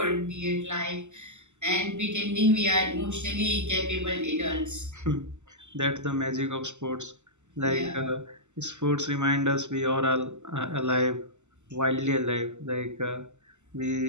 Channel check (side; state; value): left; late; 0.84 ms